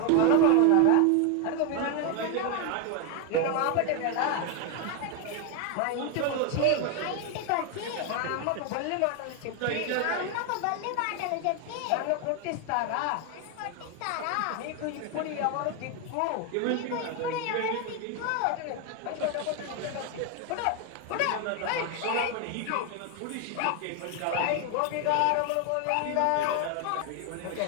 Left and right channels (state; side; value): different; both; correlation 0.01